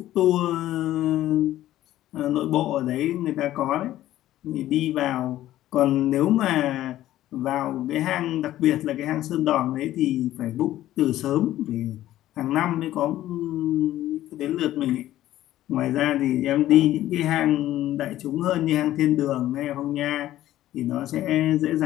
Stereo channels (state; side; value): quieter; right; 13.9 dB